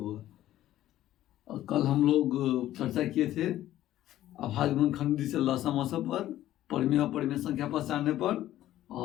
होगा। और कल हम लोग चर्चा किए थे अभाज्य गुणनखंड से लसा मसा पर, परिमेय और परिमेय संख्या पहचानने पर,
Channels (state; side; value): quieter; right; 13.6 dB